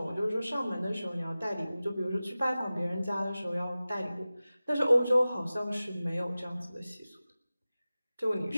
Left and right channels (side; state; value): both; inverted; correlation -0.96